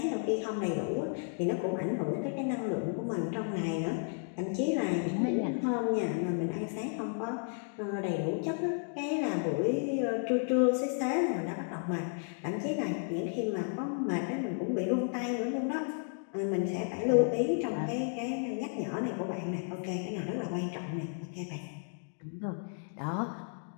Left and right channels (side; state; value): right; silent; 56 dB below the other